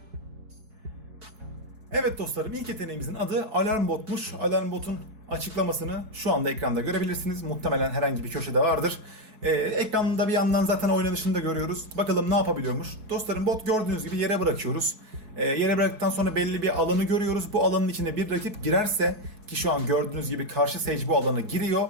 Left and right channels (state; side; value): late; left; 4.7 ms